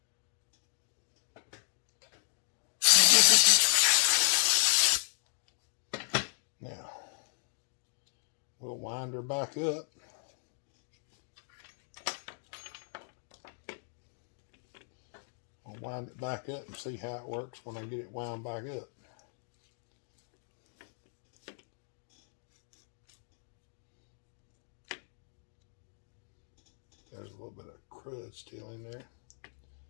Now, we'll wind her back up. I'll wind it back up and see how it works when I get it wound back up. There's a little bit of crud still in there.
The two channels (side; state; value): right; silent; 54 dB below the other